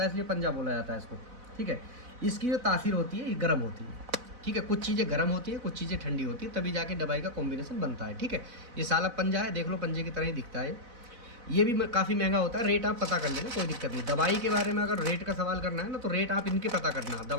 है इसलिए पंजा बोला जाता है इसको। ठीक है, इसकी जो तासीर होती है ये गर्म होती है। ठीक है, कुछ चीज़ें गर्म होती है, कुछ चीज़ें ठंडी होती है, तभी जाके दवाई का कॉम्बिनेशन बनता है। ठीक है, ये सालब पंजा है, देख लो पंजे की तरह ही दिखता है। ये भी काफ़ी महंगा होता है, रेट आप पता कर लेना, कोई दिक्कत नहीं। दवाई के बारे में अगर रेट का सवाल करना है ना तो रेट आप इनके पता करना,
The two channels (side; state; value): left; late; 4.0 ms